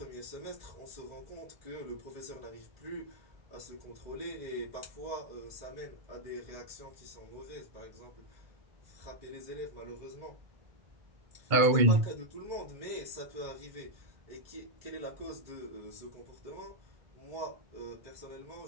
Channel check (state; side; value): late; left; 2.2 ms